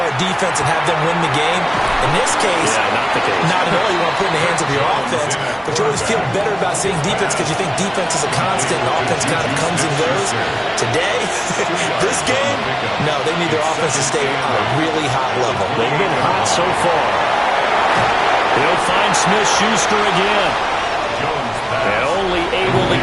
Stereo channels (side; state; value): both; identical; correlation 1.00